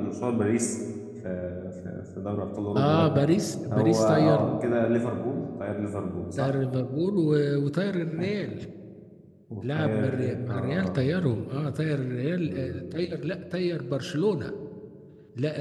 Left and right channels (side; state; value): both; identical; correlation 1.00